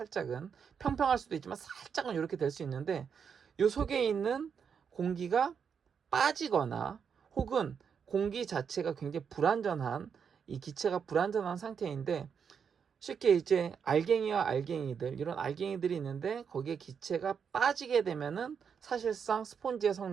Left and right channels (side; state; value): left; quieter; 6.8 dB